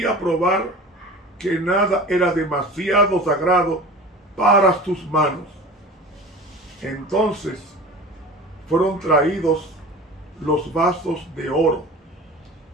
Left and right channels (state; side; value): normal; both; correlation 0.37